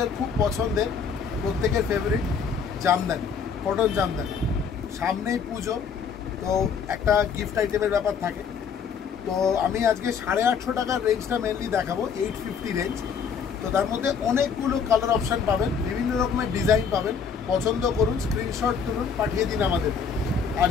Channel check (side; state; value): right; quieter; 6.3 dB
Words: খুব পছন্দের, প্রত্যেকের ফেভারিট জামদানি, কটন জামদানি। সামনেই পুজো, তো একটা গিফট আইটেমের ব্যাপার থাকে। তো আমি আজকে 850 টাকার রেঞ্জটা মেনলি দেখাবো, 850 রেঞ্জ। তো তার মধ্যে অনেকগুলো কালার অপশান পাবেন, বিভিন্ন রকমের ডিজাইন পাবেন। পছন্দ করুন, স্ক্রিনশট তুলুন, পাঠিয়ে দিন আমাদের। আর